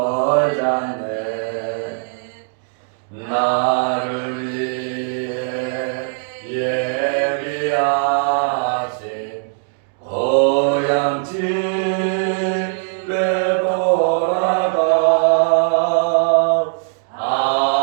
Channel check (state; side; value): silent; left; digital silence